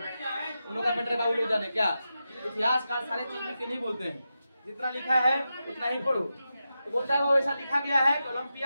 उन लोग का मैटर बाबू लोग जाने क्या, इतिहासकार सारे चीज लिख के नहीं बोलते हैं, जितना लिखा है उतना ही पढ़ो। तो बोलता है वो ऐसा लिखा गया है कि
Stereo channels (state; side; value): inverted; both; correlation -0.90